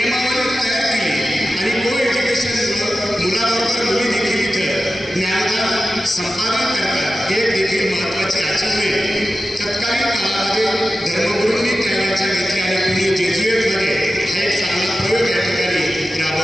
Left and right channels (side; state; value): both; normal; correlation 0.94